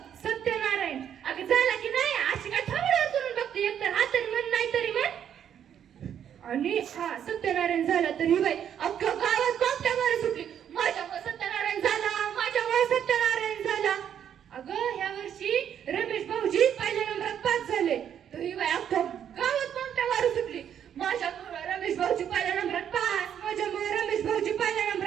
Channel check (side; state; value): left; quieter; 9.2 dB